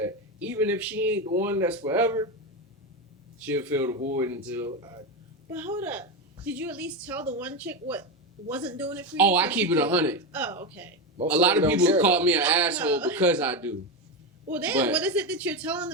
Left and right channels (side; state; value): both; normal; correlation 0.14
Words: even if she ain't the one that's forever, she'll fill the void until I. But hold up. Did you at least tell the one chick what wasn't doing it for you? Oh, I So keep she it could- 100. Oh, okay. Most A lot of them people don't care call about me an No. asshole because I do. Well, damn. But- What is it that you're telling